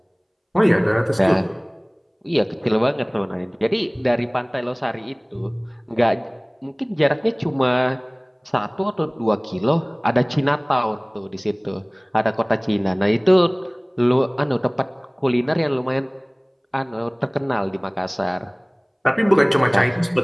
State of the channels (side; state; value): both; identical; correlation 1.00